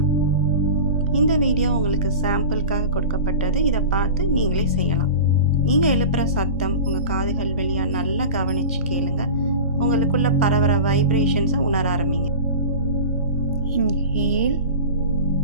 இந்த வீடியோ உங்களுக்கு சாம்பிளுக்காக கொடுக்கப்பட்டது. இதை பார்த்து நீங்களே செய்யலாம். நீங்கள் எழுப்புகிற சத்தம் உங்கள் காதுகள் வழியாக நல்லா கவனித்து கேளுங்க. உங்களுக்குள்ள பரவற வைப்ரேஷன்ஸை உணர ஆரம்பிங்க. Inhale,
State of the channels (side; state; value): both; inverted; correlation -0.33